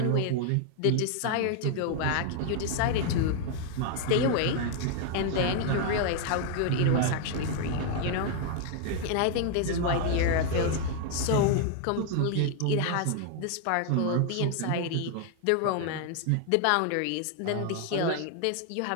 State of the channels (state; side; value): different; both; correlation 0.00